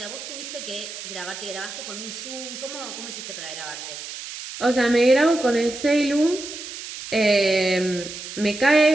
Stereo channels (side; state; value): right; noise; hiss, 10 dB below the sound